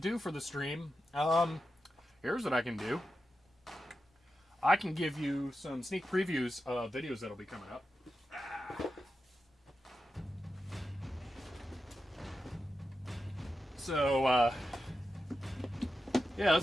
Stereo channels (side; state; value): both; normal; correlation 0.90